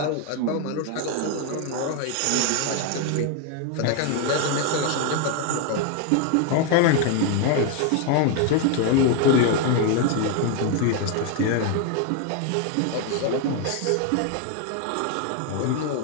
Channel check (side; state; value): both; different; correlation 0.01